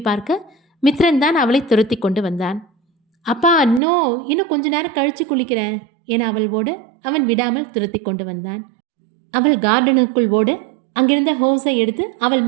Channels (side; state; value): left; drops out; at 3.8 s